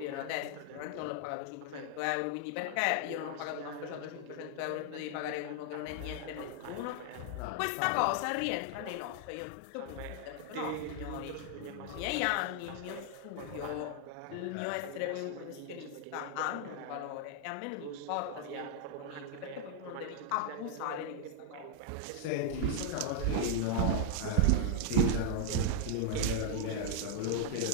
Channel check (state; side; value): different; both; correlation 0.00